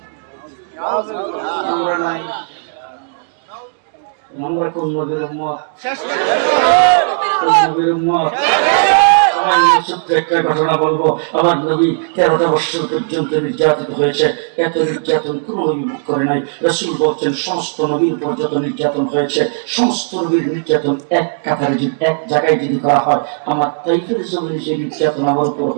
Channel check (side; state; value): left; silent; digital silence